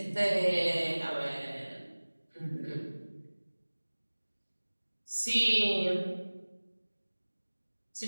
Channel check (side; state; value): both; inverted; correlation -1.00